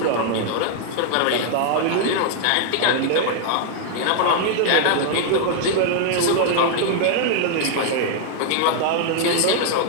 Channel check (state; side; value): different; both; correlation 0.00